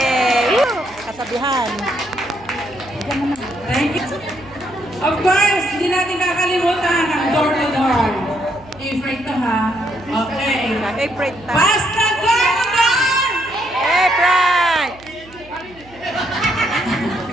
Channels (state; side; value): noise; right; hum, 24 dB below the sound